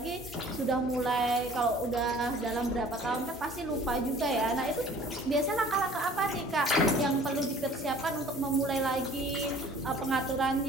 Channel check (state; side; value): normal; both; correlation 0.50